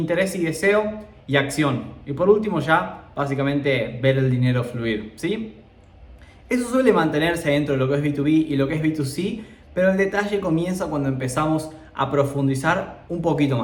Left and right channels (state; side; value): identical; both; correlation 1.00